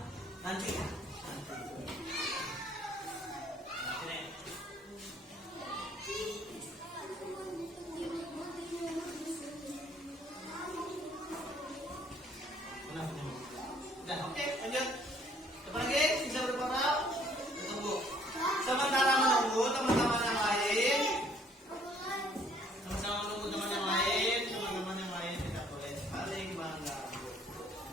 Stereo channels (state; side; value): normal; both; correlation 0.61